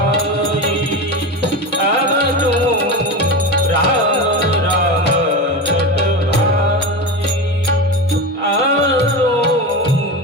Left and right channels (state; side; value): normal; both; correlation 0.23